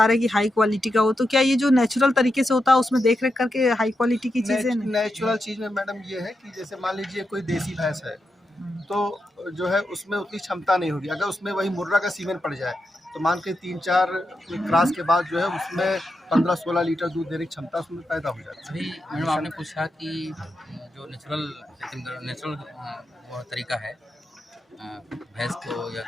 रहे हैं कि हाई क्वालिटी का हो, तो क्या ये जो नेचुरल तरीके से होता है उसमें देख रेख करके हाई क्वालिटी की चीज़ें? नेचुरल चीज़ में मैडम ये है कि जैसे मान लीजिए कोई देसी भैंस है तो जो है उसमें उतनी क्षमता नहीं होगी। अगर उसमें वही मुर्रा का सीमेंट पड़ जाए तो मान के 3-4 क्रॉस के बाद जो है उसमें 15-16 लीटर दूध देने की क्षमता उसमें पैदा हो जाती है। अभी मैडम आपने पूछा कि जो नेचुरल तरीका है भैंस को या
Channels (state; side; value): normal; both; correlation 0.87